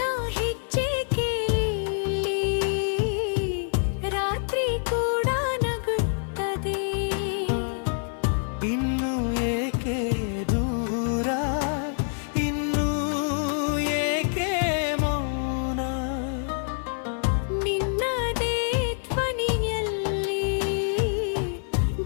ಇನ್ನು ಏಕೆ ದೂರ ಇನ್ನು ಏಕೆ ಮೌನ ನಿನ್ನದೇ ಧ್ವನಿಯಲ್ಲಿ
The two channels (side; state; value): right; silent; 56 dB below the other